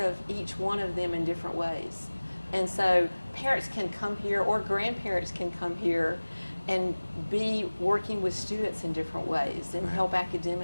of each one of them in different ways. And so parents can come here, or grandparents can come here and be working with students in different ways and help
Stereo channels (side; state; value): both; inverted; correlation -1.00